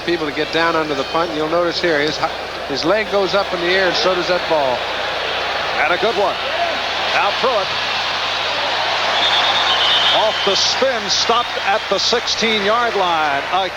people to get down under the punt. You'll notice here his leg goes up in the air, and so does that ball. And a good one. Now Pruitt off the spin, stopped at the 16-yard line.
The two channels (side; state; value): right; noise; hum, 26 dB below the sound